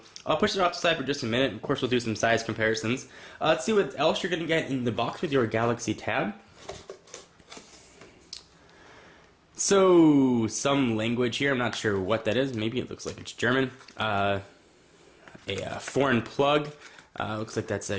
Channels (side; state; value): both; identical; correlation 1.00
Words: I'll push it off the side for just a minute. Of course, we'll do some size comparisons. Let's see what else you're going to get in the box with your Galaxy Tab. So, some language here. I'm not sure what that is. Maybe it looks like it's German. A foreign plug. Looks like that's